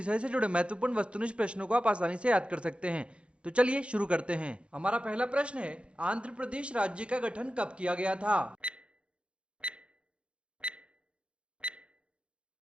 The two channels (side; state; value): left; late; 0.059 ms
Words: से जुड़े महत्वपूर्ण वस्तुनिष्ठ प्रश्नों को आप आसानी से याद कर सकते हैं। तो चलिए शुरू करते हैं। हमारा पहला प्रश्न है, आंध्र प्रदेश राज्य का गठन कब किया गया था?